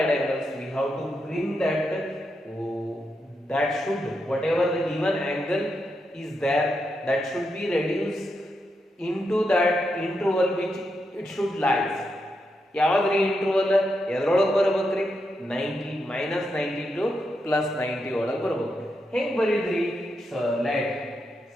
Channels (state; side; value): normal; both; correlation 0.84